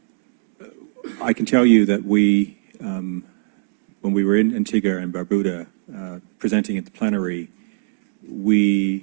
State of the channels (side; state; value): left; silent; digital silence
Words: I can tell you that we, when we were in Antigua and Barbuda presenting at the plenary,